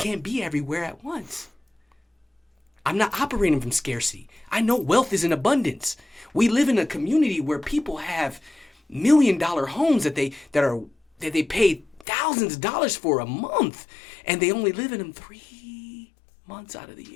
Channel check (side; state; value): right; drops out; at 12.1 s